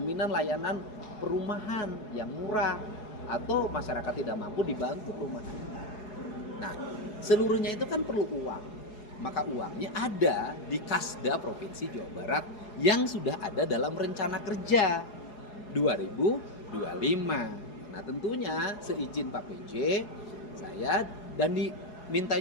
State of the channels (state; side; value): late; right; 4.8 ms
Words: layanan perumahan yang murah, atau masyarakat tidak mampu dibantu perumahan. Nah, seluruhnya itu kan perlu uang. Maka uangnya ada di Kasda Provinsi Jawa Barat yang sudah ada dalam rencana kerja 2025. Nah, tentunya seizin Pak PJ, saya dan diminta